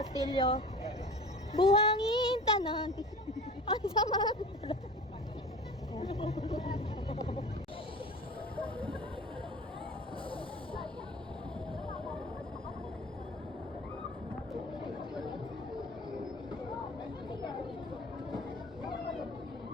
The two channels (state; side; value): normal; both; correlation 0.38